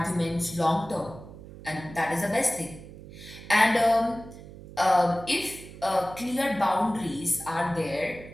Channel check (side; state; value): right; noise; hum, 16 dB below the sound